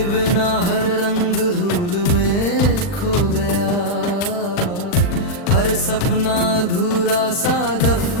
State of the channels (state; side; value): late; right; 40 ms